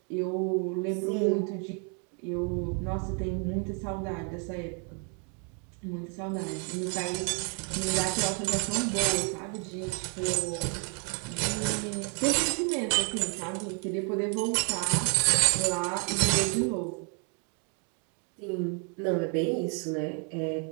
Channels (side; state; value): left; quieter; 38.8 dB